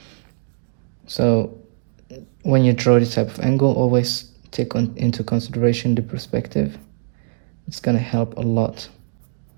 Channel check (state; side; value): silent; left; digital silence